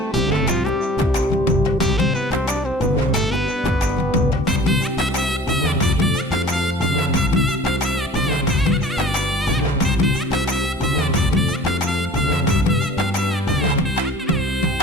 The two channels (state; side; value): normal; both; correlation 0.46